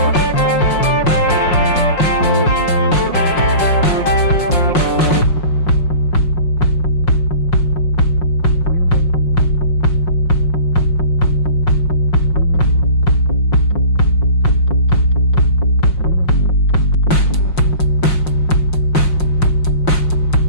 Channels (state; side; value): late; right; 5.6 ms